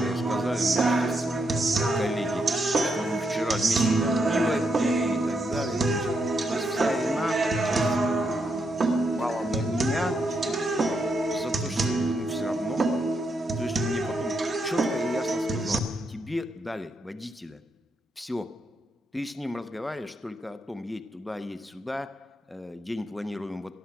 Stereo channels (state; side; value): normal; both; correlation 0.81